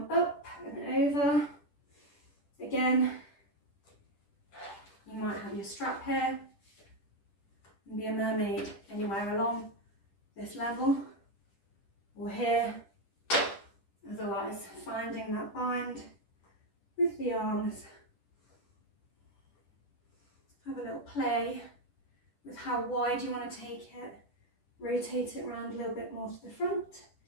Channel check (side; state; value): right; late; 10 ms